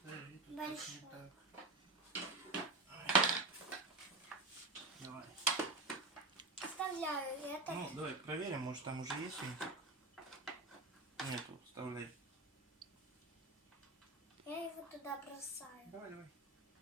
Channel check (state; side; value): quieter; left; 3.0 dB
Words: Большой. Давай. Вставляю это. Ну, давай проверим, может там уже есть винтик. Нету, вставляй. Я его туда бросаю. Давай. Ну,